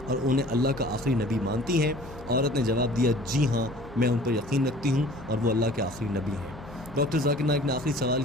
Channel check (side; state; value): both; normal; correlation 0.47